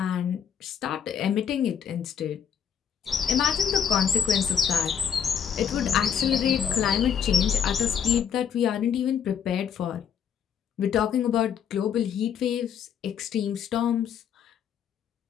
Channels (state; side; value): quieter; right; 8.0 dB